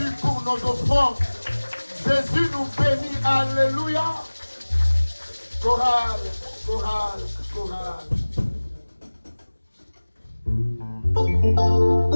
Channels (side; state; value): both; inverted; correlation -1.00